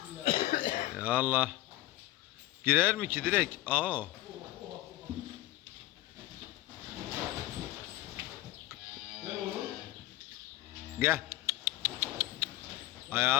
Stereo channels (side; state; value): right; quieter; 16.8 dB